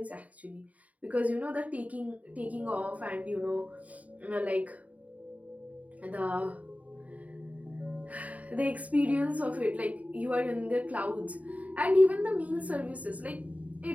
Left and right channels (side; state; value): left; late; 0.070 ms